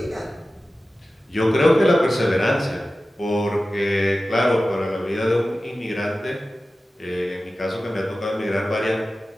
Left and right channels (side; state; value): both; normal; correlation 0.95